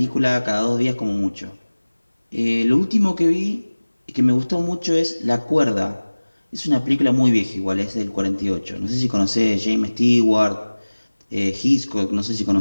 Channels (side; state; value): both; inverted; correlation -1.00